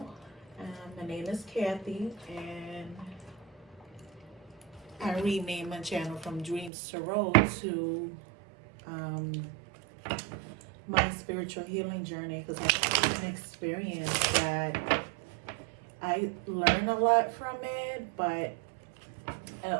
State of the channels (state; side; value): drops out; left; at 6.7 s